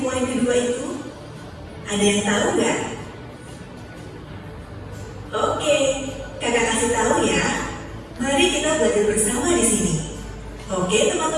kedua itu? Ada yang tahu nggak? Oke, kakak kasih tahu ya. Mari kita belajar bersama di sini. Oke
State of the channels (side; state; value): both; identical; correlation 1.00